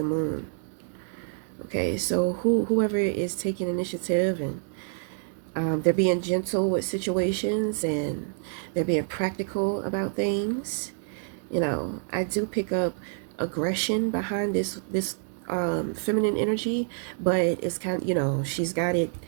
moon. Okay, so whoever is taking initiative and they're being gentle with situations and they're being practical about things. I do pick up aggression behind this feminine energy, but it's kind of, she's got it.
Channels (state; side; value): silent; left; digital silence